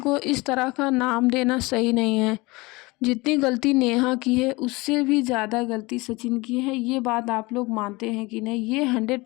इस तरह का नाम देना सही नहीं है। जितनी गलती नेहा की है उससे भी ज़्यादा गलती सचिन की है। ये बात आप लोग मानते हैं कि नहीं? ये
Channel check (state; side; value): quieter; right; 23.4 dB